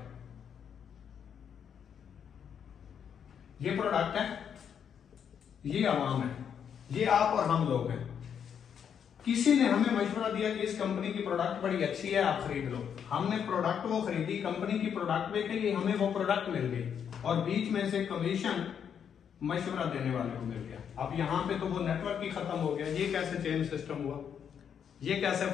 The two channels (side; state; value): right; quieter; 8.0 dB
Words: ये प्रोडक्ट है, ये आवाम है, ये आप और हम लोग हैं। किसी ने हमें मशवरा दिया कि इस कंपनी की प्रोडक्ट बड़ी अच्छी है, आप खरीद लो। हमने प्रोडक्ट वो खरीदी, कंपनी की प्रोडक्ट बेची, हमें वो प्रोडक्ट मिल गई, और बीच में से कमीशन मशवरा देने वाले को मिल गया। अब यहां पे तो वो नेटवर्क ही खत्म हो गया। ये कैसे चेन सिस्टम हुआ? ये कैसे